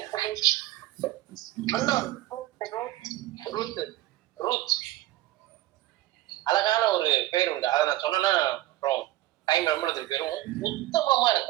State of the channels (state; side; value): quieter; left; 16.1 dB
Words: ரூத் அழகான ஒரு பேர் உண்டு. அதை நான் சொன்னா அப்புறம் டைம் ரொம்ப பேரும். உத்தமமா